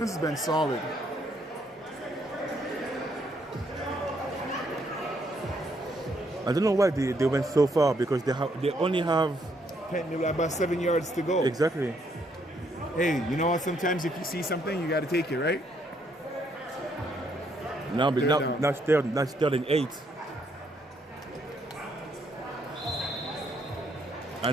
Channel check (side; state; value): both; normal; correlation 0.72